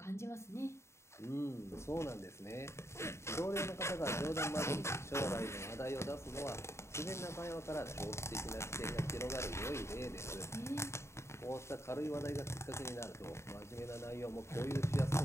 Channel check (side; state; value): right; late; 0.13 ms